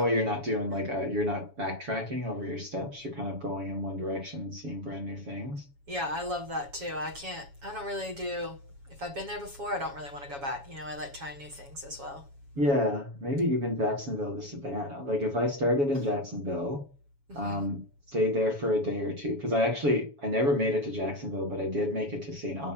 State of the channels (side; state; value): left; late; 7.2 ms